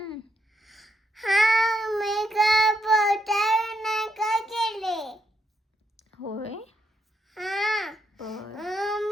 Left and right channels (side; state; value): both; normal; correlation 0.78